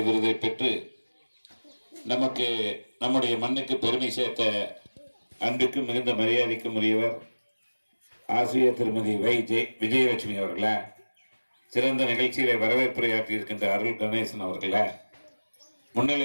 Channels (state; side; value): inverted; both; correlation -1.00